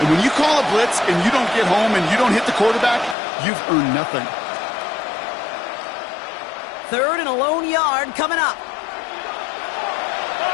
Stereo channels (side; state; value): right; drops out; at 3.2 s